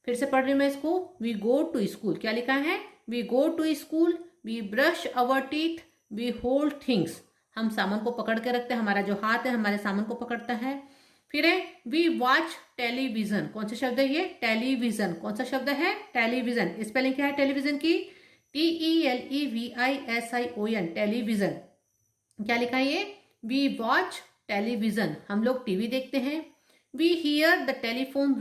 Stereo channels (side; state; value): both; identical; correlation 1.00